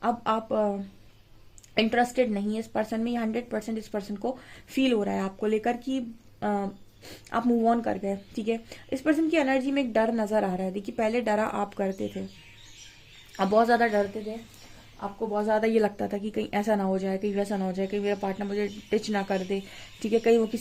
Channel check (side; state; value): both; identical; correlation 1.00